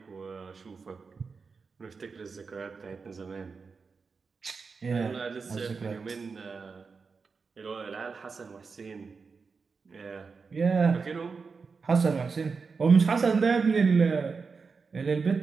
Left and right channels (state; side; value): quieter; left; 5.0 dB